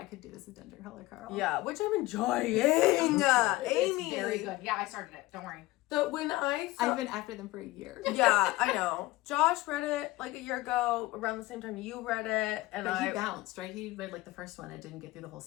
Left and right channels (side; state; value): right; quieter; 19.1 dB